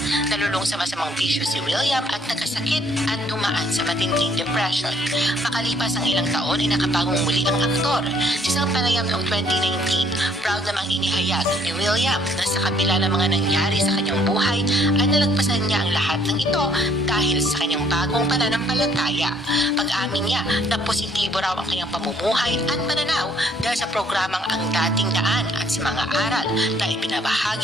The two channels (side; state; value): both; normal; correlation 0.63